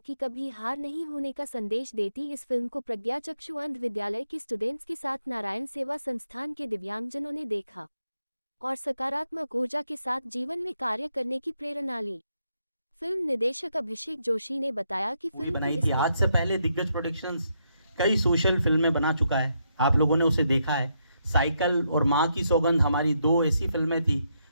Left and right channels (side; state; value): both; inverted; correlation -0.79